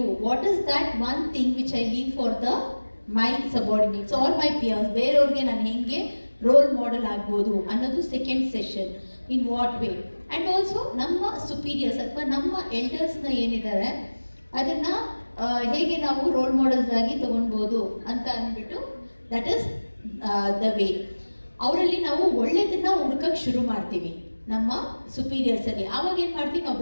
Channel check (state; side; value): inverted; both; correlation -1.00